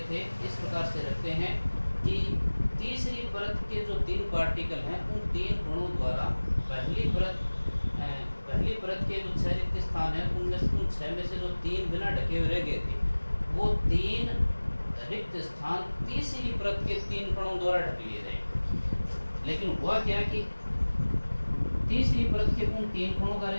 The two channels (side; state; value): both; inverted; correlation -1.00